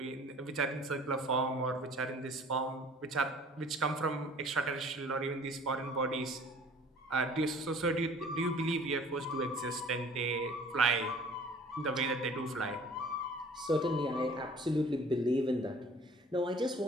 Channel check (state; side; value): normal; both; correlation 0.49